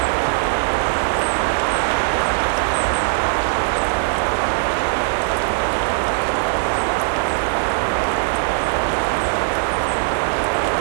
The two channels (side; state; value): left; silent; digital silence